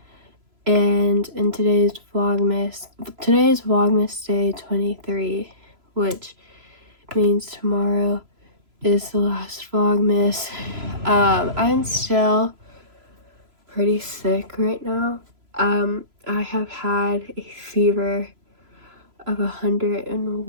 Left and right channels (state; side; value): late; left; 3.0 ms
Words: And in today's Vlogmas day 23, which means tomorrow is the last Vlogmas. I'm still pretty sick right now. I have had a fever of